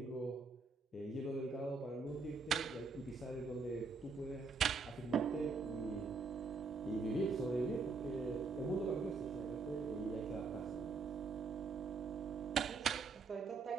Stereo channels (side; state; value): left; quieter; 4.4 dB